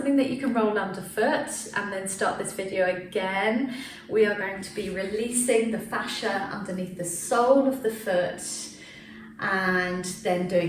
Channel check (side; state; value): both; identical; correlation 1.00